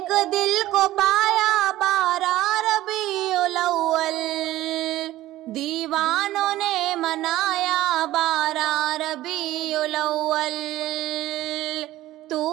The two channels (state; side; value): quieter; left; 15.6 dB